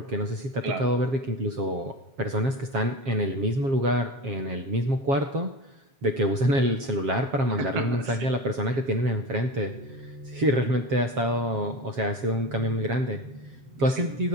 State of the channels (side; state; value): left; late; 7.4 ms